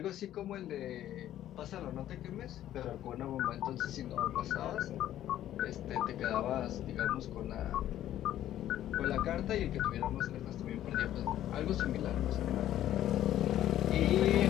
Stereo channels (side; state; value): right; quieter; 12.4 dB